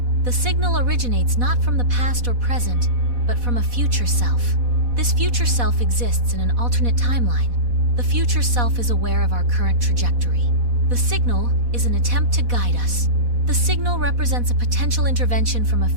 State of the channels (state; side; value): late; left; 4.1 ms